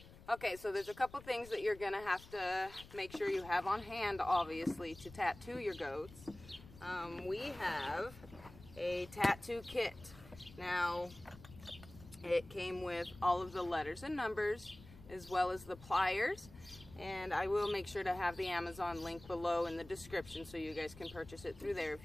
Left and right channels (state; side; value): noise; left; rumble, 19 dB below the sound